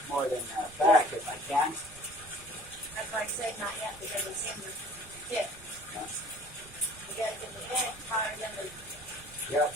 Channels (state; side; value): noise; right; rumble, 20 dB below the sound